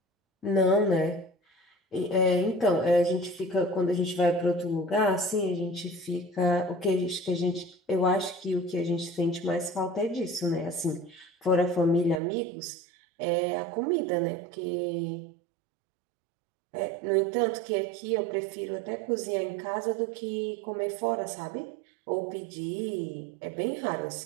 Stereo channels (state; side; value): drops out; left; at 12.2 s